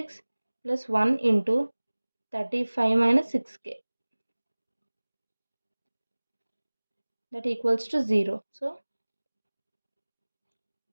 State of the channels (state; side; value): inverted; both; correlation -1.00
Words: plus 1 into 35 minus 6k. That equals to 0. So